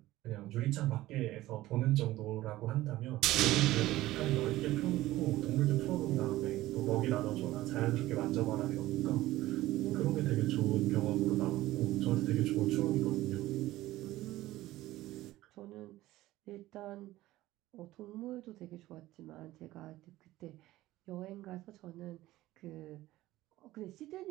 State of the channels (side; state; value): left; quieter; 16.5 dB